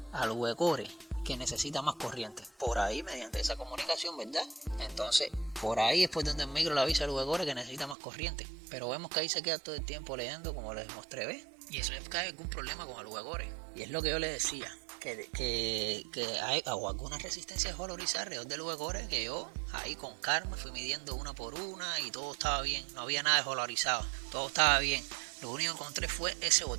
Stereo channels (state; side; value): drops out; left; at 8.0 s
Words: al V-Core que necesita más corriente. Por ahí, mediante esa comunicación, ¿verdad? Entonces, por ahí es por donde el micro le avisa al V-Core que necesita más corriente. Pero vemos que ahí se queda todo el tiempo leyendo, como les mostré, ¿ves? Y eso es que hay algún problema con el V-Core. Y es lo que yo les decía, que hay alguna resistencia de holorizar alrededor del V-Core, que yo ahí con calma fui midiendo una por una y todo estaba bien, no había nada de holorizado, todo estaba bien. Lo único que encontré fue ese